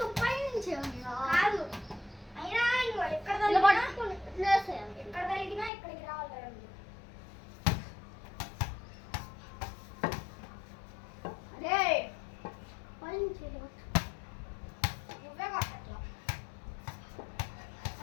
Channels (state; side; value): drops out; right; at 5.7 s